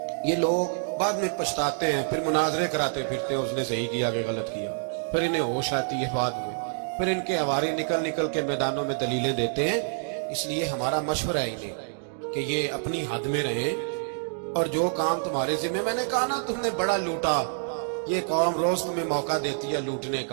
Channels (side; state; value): left; silent; digital silence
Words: یہ لوگ بعد میں پچھتاتے ہیں، پھر مناظرے کراتے پھرتے ہیں اس نے صحیح کیا کہ غلط کیا، پھر انہیں ہوش آتی ہے بعد میں، پھر ان کے ہواری نکل نکل کے میدانوں میں دلیلیں دیتے ہیں. اس لیے ہمارا مشورہ ہے انہیں کہ یہ اپنی حد میں رہیں، اور جو کام تمہارے ذمہ، میں نے کہا نا تم نے بڑا لوٹا، یہ قوم روز تمہیں موقع دیتی ہے لوٹنے